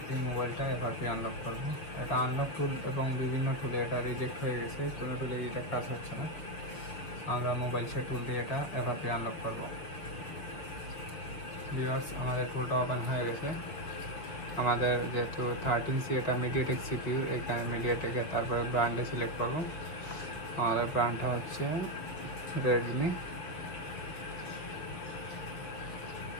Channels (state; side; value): late; right; 6.4 ms